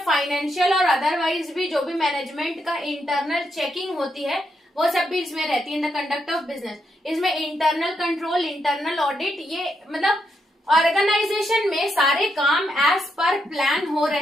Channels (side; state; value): both; normal; correlation 0.80